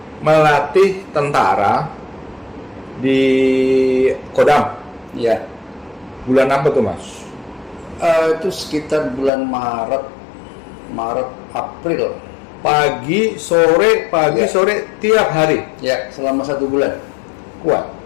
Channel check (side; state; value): right; drops out; at 9.3 s